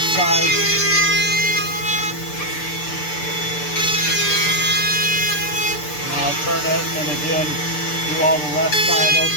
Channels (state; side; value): late; right; 6.7 ms